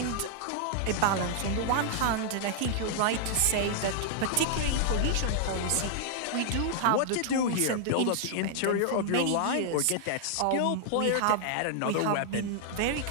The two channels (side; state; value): both; different; correlation -0.01